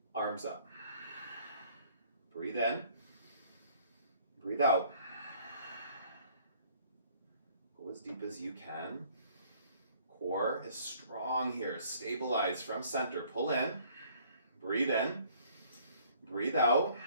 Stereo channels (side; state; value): both; inverted; correlation -0.58